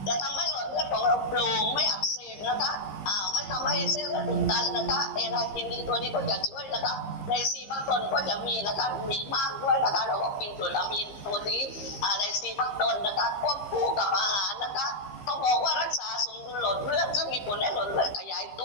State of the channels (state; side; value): late; right; 15 ms